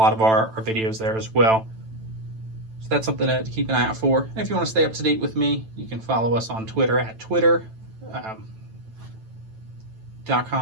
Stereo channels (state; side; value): late; left; 9.1 ms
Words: of our videos there as well. So that's something to keep an eye out for. And if you want to stay up to date with me, you can follow us on Twitter at twitter.com. I